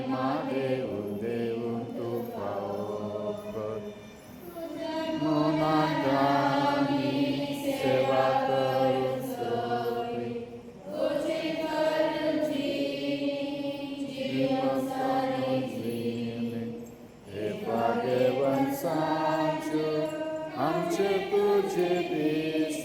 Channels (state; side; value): identical; both; correlation 1.00